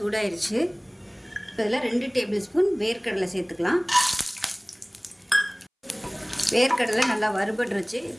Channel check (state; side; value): identical; both; correlation 1.00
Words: இப்போ இதில் 2 டேபிள் ஸ்பூன் வேர்க்கடலை சேர்த்துக்கலாம். வேர்க்கடலை நல்லா வறுபட்டுருச்சு.